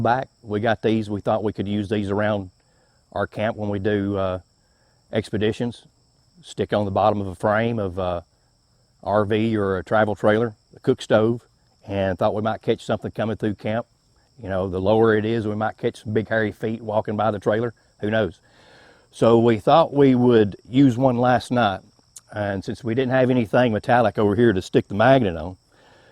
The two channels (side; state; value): both; identical; correlation 1.00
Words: back. We got these, we thought we could use these around our camp when we do expeditions. Stick on the bottom of a frame of a RV or a travel trailer, a cook stove, and thought we might catch something coming through camp. You know, the lower it is, we might catch some big hairy feet walking by the trailer, who knows. So we thought we would use one last night, and since we didn't have anything metallic over here to stick the magnet on,